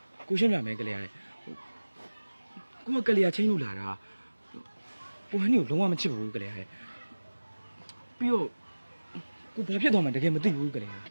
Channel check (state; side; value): inverted; both; correlation -1.00